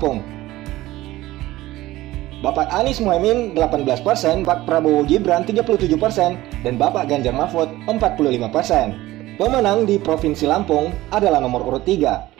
Bapak Anies Muhaimin 18%, Bapak Prabowo Gibran 37%, dan Bapak Ganjar Mahfud 45%. Pemenang di Provinsi Lampung adalah nomor urut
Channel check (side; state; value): left; quieter; 17.0 dB